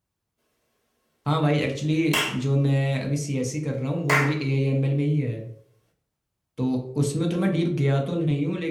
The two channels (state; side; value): identical; both; correlation 1.00